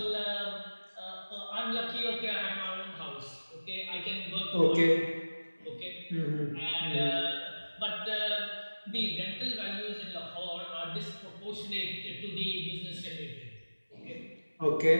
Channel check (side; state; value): both; inverted; correlation -1.00